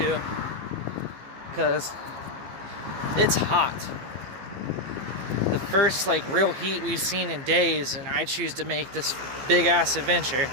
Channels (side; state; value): left; late; 15 ms